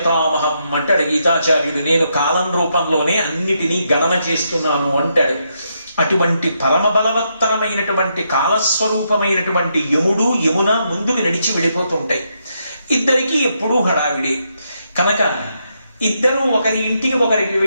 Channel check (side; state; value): both; inverted; correlation -0.79